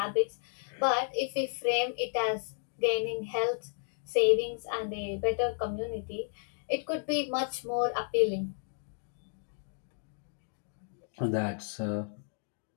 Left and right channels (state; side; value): silent; right; digital silence